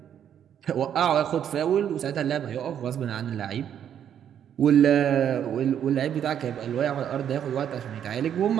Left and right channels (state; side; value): quieter; left; 9.3 dB